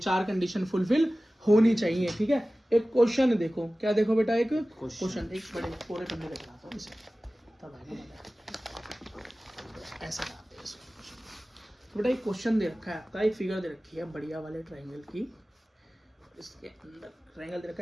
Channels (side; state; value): both; normal; correlation 0.97